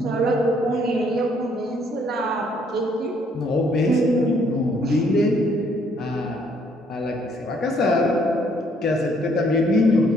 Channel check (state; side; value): normal; both; correlation 0.66